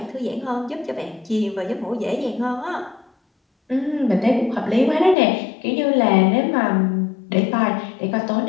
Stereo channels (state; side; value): drops out; right; at 5.2 s